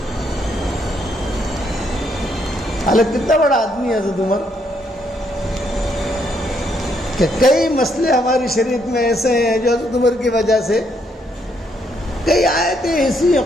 حالانکہ کتنا بڑا آدمی ہے حضرت عمر، کہ کئی مسئلے ہماری شریعت میں ایسے ہیں جو حضرت عمر کی وجہ سے، کئی آیتیں ایسی ہیں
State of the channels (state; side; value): normal; both; correlation 0.73